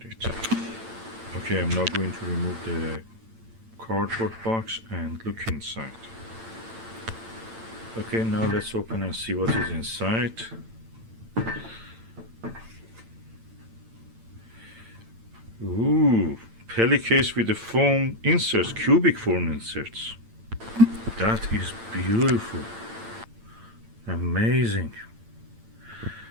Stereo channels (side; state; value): left; late; 8.9 ms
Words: it. Okay, I'm now going to remove the cardboard box and look inside. Okay, now let's open and see what is inside. Ooh, Peli case with the foam inserts, cubic foam inserts. That is beautiful. Amazing.